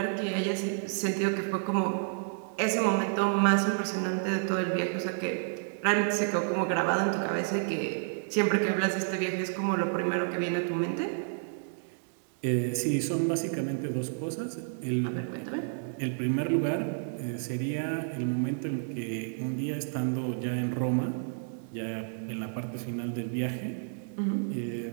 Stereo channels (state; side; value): silent; left; digital silence